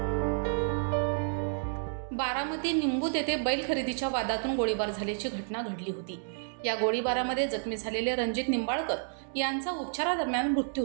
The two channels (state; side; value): silent; left; digital silence